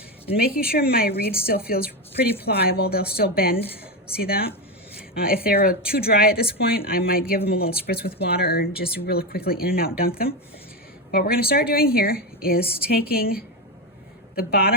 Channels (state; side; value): normal; both; correlation 0.13